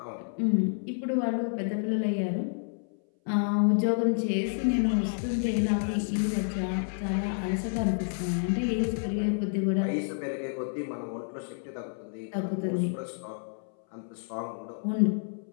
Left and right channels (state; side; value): silent; right; 58 dB below the other